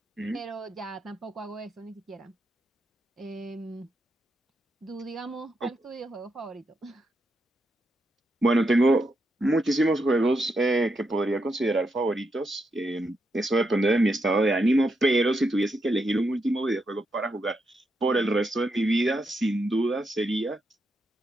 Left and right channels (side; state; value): both; normal; correlation 0.82